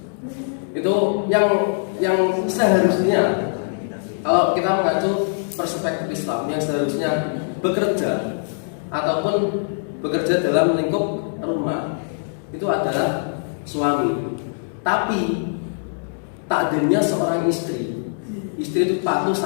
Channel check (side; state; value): right; silent; digital silence